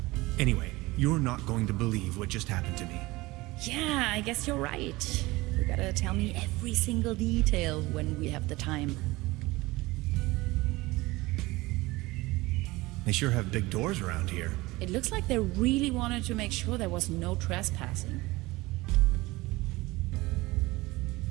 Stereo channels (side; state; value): left; quieter; 20.9 dB